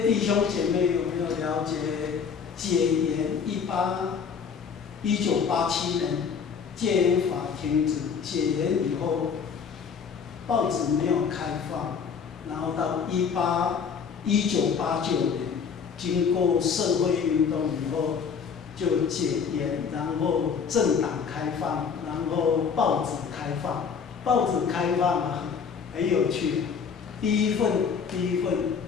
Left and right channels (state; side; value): quieter; right; 6.4 dB